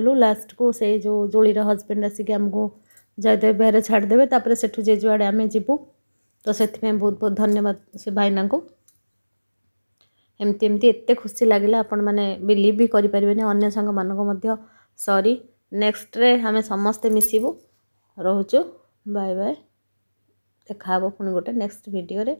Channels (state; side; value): inverted; both; correlation -1.00